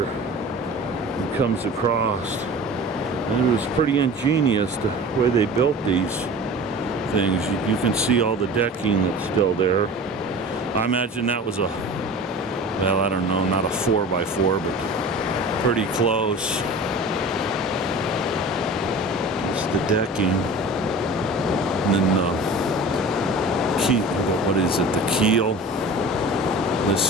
it comes across. And it was pretty ingenious the way they built these things. You can see all the decking that's still there. I imagine that was a, well, I don't know, not a 4x4, but pretty close. It's the decking. And then the key, what is it, the keel.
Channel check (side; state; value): both; normal; correlation 0.37